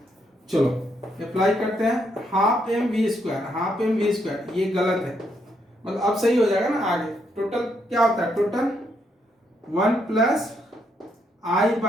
चलो अप्लाई करते हैं, half M we square, half M we square, ये गलत है, मतलब अब सही हो जाएगा ना आगे, टोटल क्या होता है, टोटल 1 प्लस आई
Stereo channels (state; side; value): normal; both; correlation 0.75